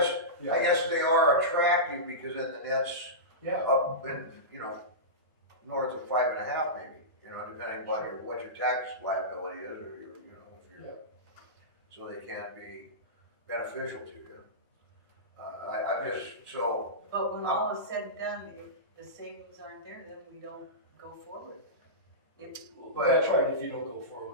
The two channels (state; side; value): normal; both; correlation -0.18